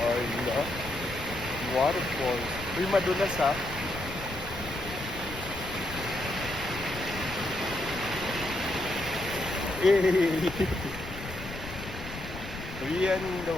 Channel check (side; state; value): left; noise; rumble, 11 dB below the sound